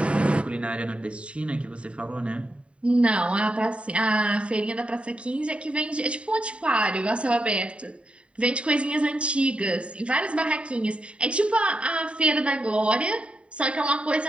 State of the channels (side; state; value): left; late; 0.060 ms